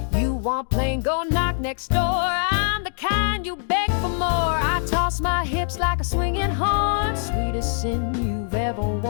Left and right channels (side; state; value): right; silent; digital silence